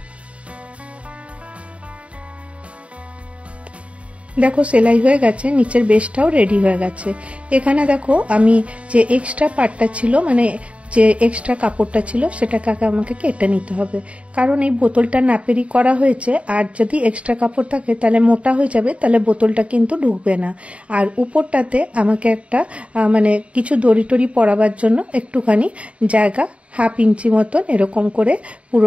দেখো সেলাই হয়ে গেছে, নিচের বেসটাও রেডি হয়ে গেছে। এখানে দেখো আমি যে এক্সট্রা পার্টটা ছিল, মানে যে এক্সট্রা কাপড়টা ছিল সেটাকে আমাকে কেটে নিতে হবে, কারণ এই বোতলটা নাপেরই করা হয়েছে। আর যদি এক্সট্রা কাপড় থাকে তাহলে মোটা হয়ে যাবে, তাহলে বোতলটা কিন্তু ঢুকবে না। আর উপরটাতে আমাকে একটা মানে কিছু দড়ি টড়ি পরাবার জন্য একটুখানি জায়গা 1/2 ইঞ্চি মতন এরকম করে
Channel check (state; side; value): late; left; 0.063 ms